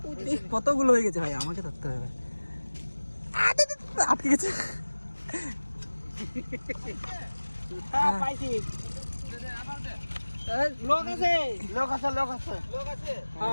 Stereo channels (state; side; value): inverted; both; correlation -1.00